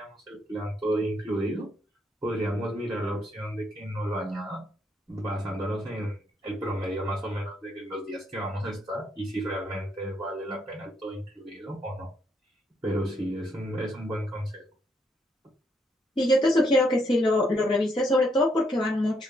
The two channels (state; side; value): normal; both; correlation 0.74